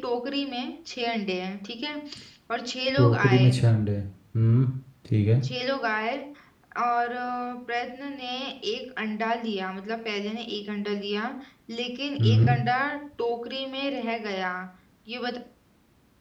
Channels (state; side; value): identical; both; correlation 1.00